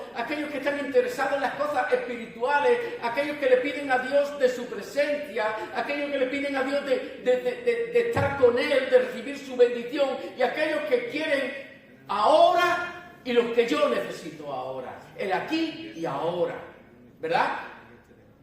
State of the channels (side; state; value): both; identical; correlation 1.00